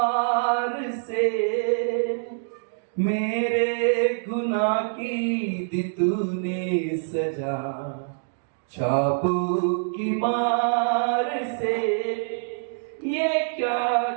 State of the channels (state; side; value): silent; left; digital silence